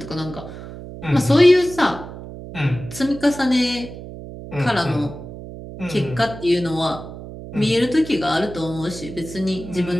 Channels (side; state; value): right; noise; hum, 12 dB below the sound